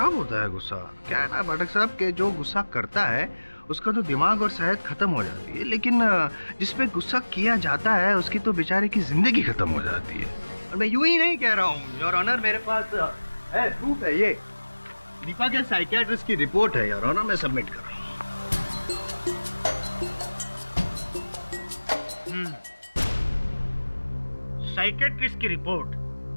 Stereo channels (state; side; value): inverted; both; correlation -1.00